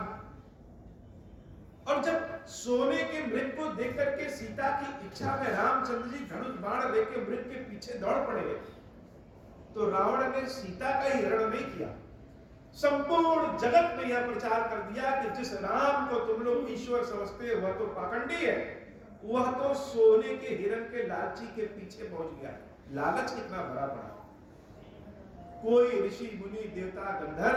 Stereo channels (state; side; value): identical; both; correlation 1.00